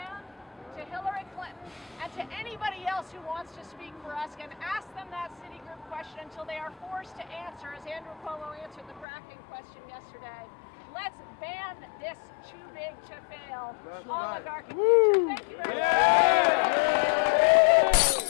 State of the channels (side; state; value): right; drops out; at 9.1 s